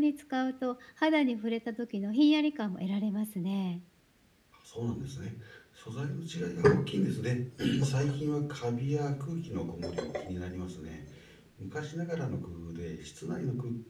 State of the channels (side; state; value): both; identical; correlation 1.00